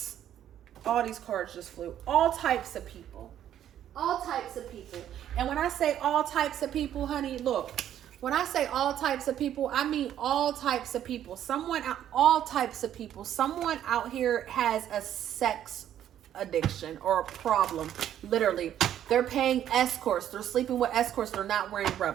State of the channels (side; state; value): left; quieter; 10.8 dB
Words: All these cards just flew. All types of people. All types of people. And when I say all types of people, honey, look. When I say all types of people, I mean all types of people. All types of people. Someone out here has a sex addiction or a problem. Literally. They're paying escorts. They're sleeping with escorts. They're not wearing